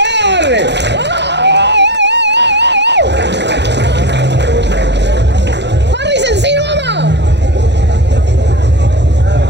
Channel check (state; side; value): late; left; 0.50 ms